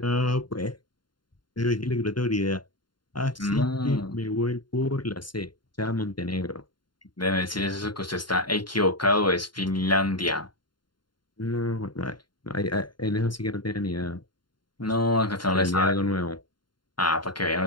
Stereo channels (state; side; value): late; right; 0.72 ms